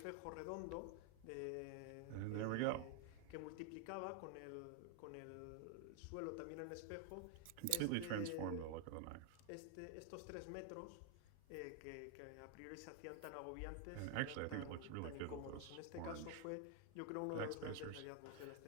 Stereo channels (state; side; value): different; both; correlation 0.00